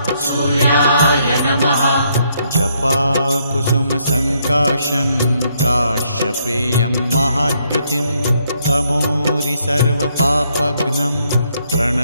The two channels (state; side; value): inverted; both; correlation -0.73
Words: सूर्याय नमः। जपाकुसुमसङ्काशं काश्यपेयं महाद्युतिं तमोरि सर्वपापघ्नं